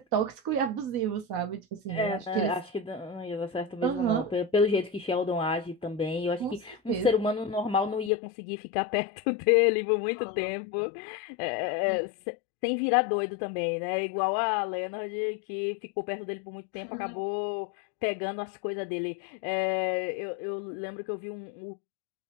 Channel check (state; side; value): drops out; right; at 8.1 s